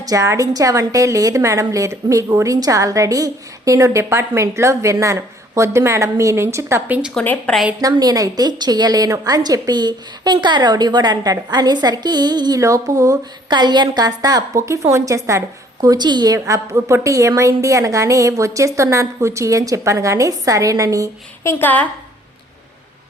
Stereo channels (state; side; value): normal; both; correlation 0.59